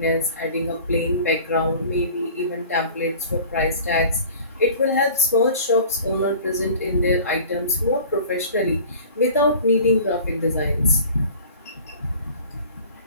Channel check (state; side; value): inverted; both; correlation -0.43